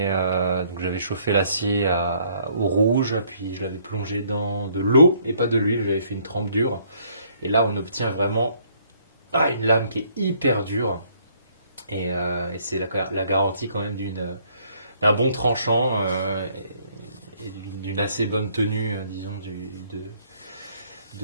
donc j'avais chauffé l'acier au rouge, puis je l'avais plongé dans de l'eau et pas de l'huile, j'avais fait une trempe dure. Et là on obtient vraiment une lame qui est hyper dure. Et c'est la garantie quand même d'un bon tranchant et d'une assez bonne tenue, disons,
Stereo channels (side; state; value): both; inverted; correlation -0.65